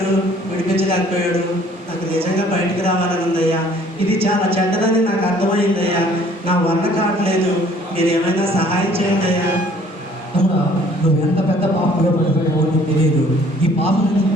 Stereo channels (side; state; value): both; normal; correlation 0.57